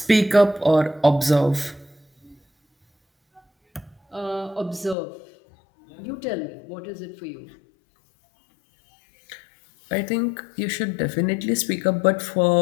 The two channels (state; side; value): drops out; right; at 5.0 s